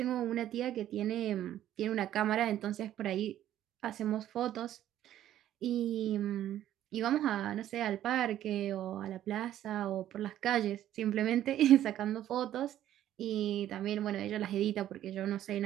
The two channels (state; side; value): quieter; left; 12.1 dB